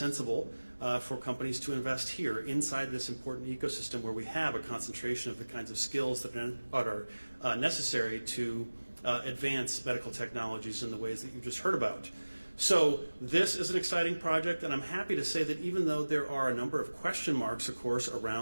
for companies to invest here inside this important ecosystem where we have a concentration of the kinds of skills that are necessary to advance medical technologies in the ways that you just heard about. So this is an exciting project, and I'm happy to say that even though there are a number of question marks, of course,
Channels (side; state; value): both; inverted; correlation -1.00